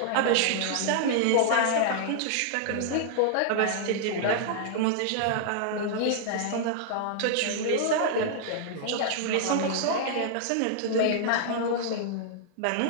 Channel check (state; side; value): different; both; correlation -0.01